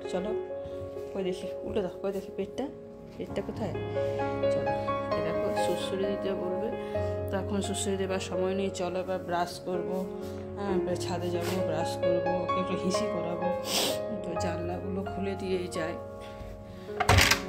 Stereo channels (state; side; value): identical; both; correlation 1.00